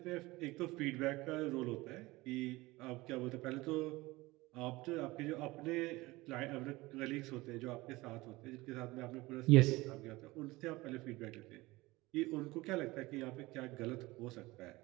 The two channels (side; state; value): left; quieter; 20.7 dB